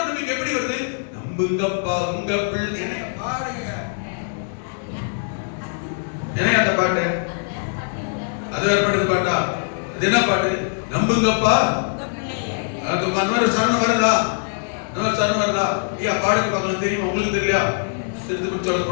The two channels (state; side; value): silent; right; digital silence